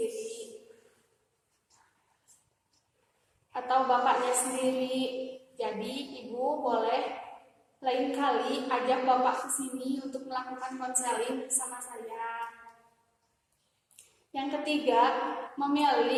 atau bapaknya sendiri. Jadi ibu boleh lain kali ajak bapak ke sini untuk melakukan konseling bersama saya. Yang ketiga,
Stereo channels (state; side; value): identical; both; correlation 1.00